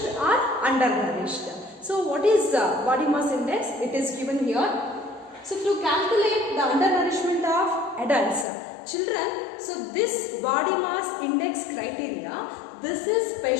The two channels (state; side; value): drops out; right; at 8.5 s